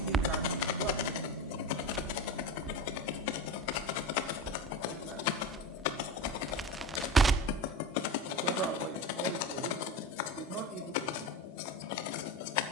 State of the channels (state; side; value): normal; both; correlation 0.26